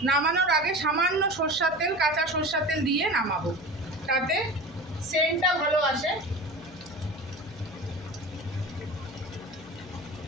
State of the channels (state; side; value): noise; left; hum, 19 dB below the sound